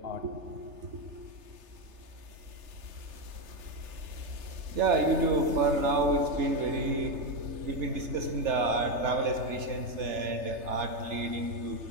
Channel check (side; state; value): left; late; 3.3 ms